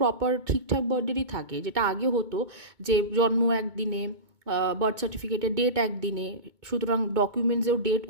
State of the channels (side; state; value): left; late; 2.2 ms